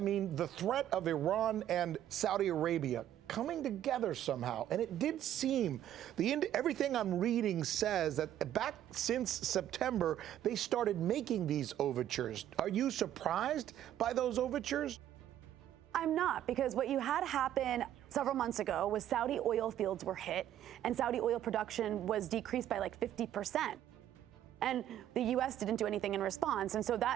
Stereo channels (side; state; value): left; quieter; 11.5 dB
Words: the threat of Iran and Saudi Arabia coming together somehow, and it did seem, everything I'm reading says that back since September, they started making these overtures. Are you surprised by those overtures? I'm not, because what you had happen several months ago was Saudi oil fields were hit, and Saudi oil production was decreased by like 50%. And the U.S. didn't do anything in response. And so